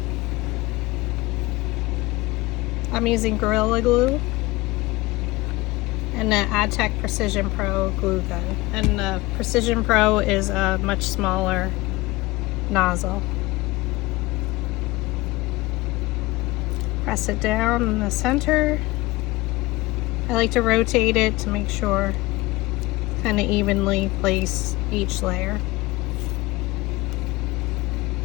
I'm using Gorilla Glue and the AdTech Precision Pro glue gun, and the Precision Pro is a much smaller nozzle. Press it down in the center. I like to rotate it to make sure kind of evenly place each layer.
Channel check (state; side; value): quieter; right; 20.8 dB